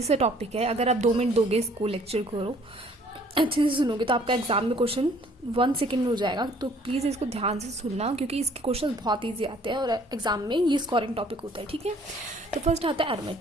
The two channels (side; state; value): both; normal; correlation 0.58